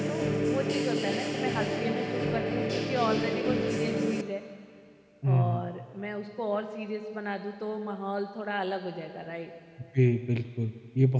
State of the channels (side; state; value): both; identical; correlation 1.00